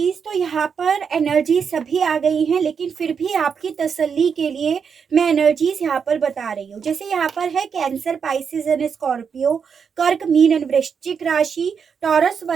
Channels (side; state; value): left; quieter; 6.5 dB